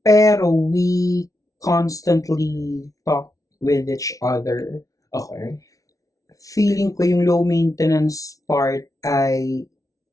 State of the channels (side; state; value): right; late; 0.17 ms